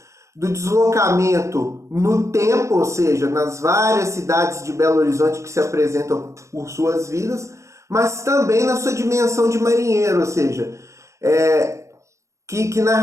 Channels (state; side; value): late; left; 0.15 ms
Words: do deslocamento no tempo, ou seja, nas várias cidades de Belo Horizonte que se apresentam por suas vidas, mas também na sua dimensão de marinheiro, ou seja, que